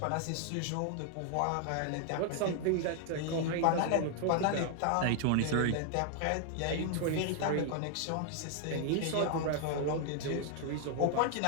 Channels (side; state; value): both; different; correlation 0.00